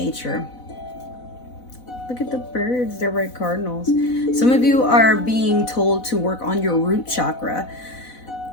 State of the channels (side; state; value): right; late; 4.0 ms